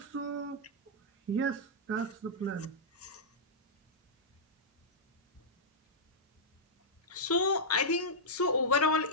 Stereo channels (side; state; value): both; normal; correlation -0.10